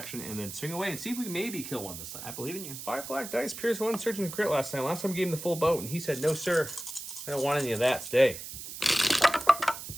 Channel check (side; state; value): right; noise; hiss, 10 dB below the sound